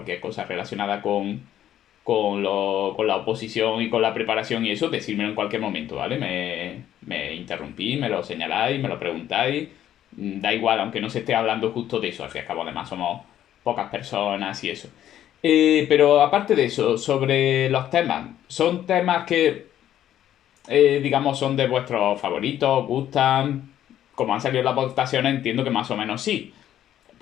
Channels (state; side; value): quieter; right; 11.5 dB